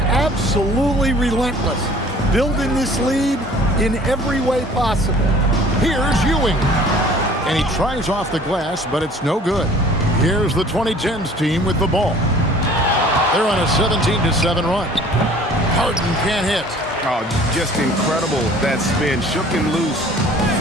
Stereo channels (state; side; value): normal; both; correlation 0.50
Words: relentless, building this lead in every way possible. Here's Ewing. And he tries off the glass, but it's no good. Here's the 2010s team with the ball. They're on a 17-7 run. Harden can't hit. Oh, just incredible. That spin shook him loose